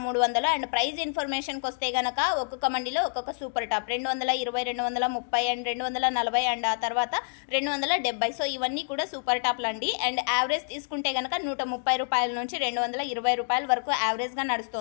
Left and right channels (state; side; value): silent; right; digital silence